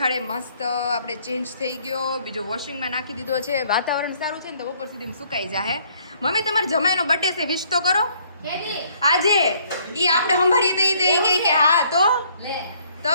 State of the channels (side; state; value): both; inverted; correlation -0.64